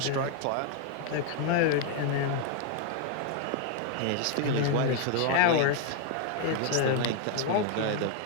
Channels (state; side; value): different; both; correlation 0.00